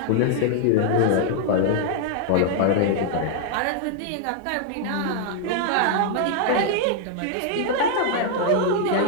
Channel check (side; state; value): both; different; correlation 0.00